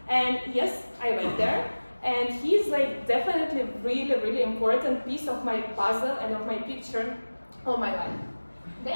And yes, I went there, and he's like definitely really, really important piece of my puzzle and of my picture of my life.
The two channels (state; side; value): inverted; both; correlation -1.00